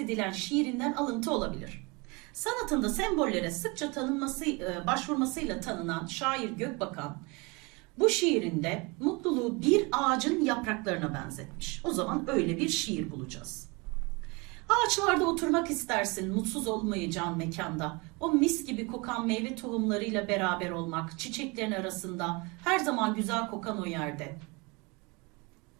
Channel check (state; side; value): quieter; left; 27.7 dB